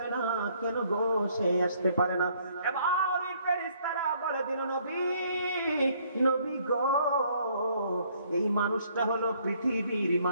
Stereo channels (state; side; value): inverted; both; correlation -0.65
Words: না। কেন গো সে আসতে পারে না? এবার ফেরেশতারা বলে দিল, নবী, নবী গো, এই মানুষটা হলো পৃথিবীর